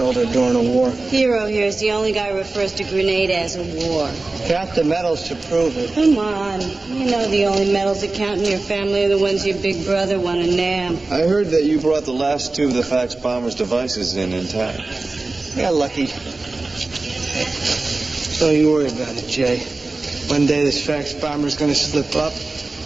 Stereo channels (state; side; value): quieter; left; 3.4 dB